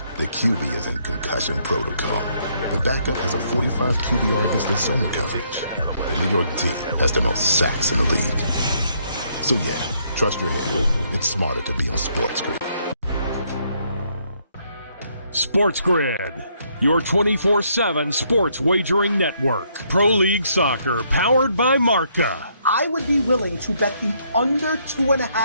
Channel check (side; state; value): both; inverted; correlation -0.71